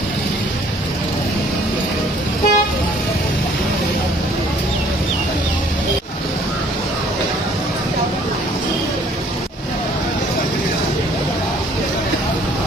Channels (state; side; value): normal; both; correlation 0.58